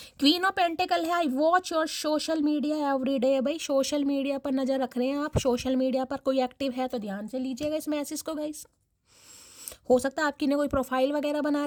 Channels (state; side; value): identical; both; correlation 1.00